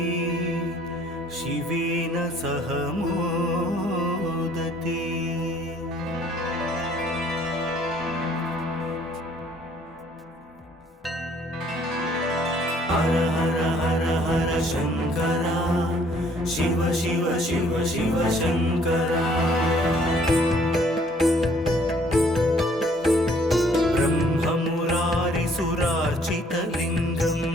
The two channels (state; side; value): normal; both; correlation 0.60